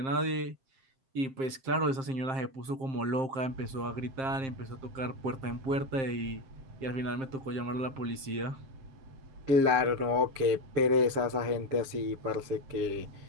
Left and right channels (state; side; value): late; left; 7.6 ms